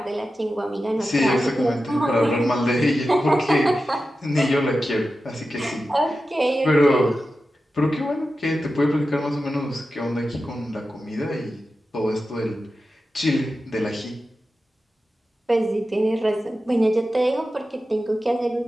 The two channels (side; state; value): both; normal; correlation 0.92